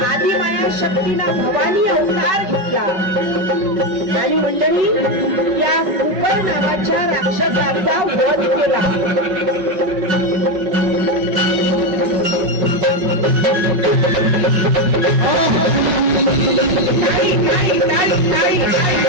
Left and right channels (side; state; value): left; late; 5.3 ms